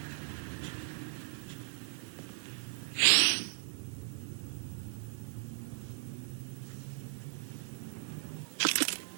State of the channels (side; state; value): left; silent; digital silence